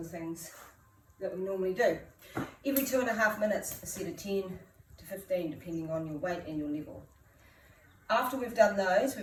things that we normally do. Every 2.5 minutes, a set of 10 to 15, depending on your weight and your level. After we've done those,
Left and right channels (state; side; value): identical; both; correlation 1.00